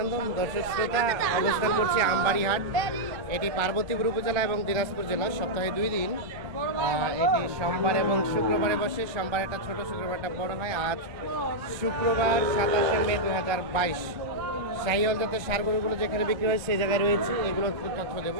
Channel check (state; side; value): late; left; 1.3 ms